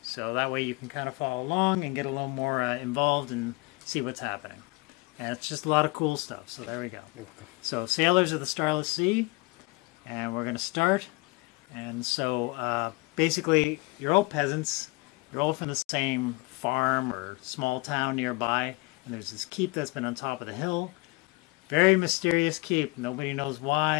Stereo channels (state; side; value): quieter; right; 25.4 dB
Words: So that way you can kind of follow along and get a little more involved and see what's happening. And it's just a lot of cool stuff. So there we go. So Sailors of the Starless Sea, and we're going to start. And so basically you're all peasants. You're all from the same farm or small town nearby. And there's this keep that's been on top of the hill. Very mysterious keep. Nobody knows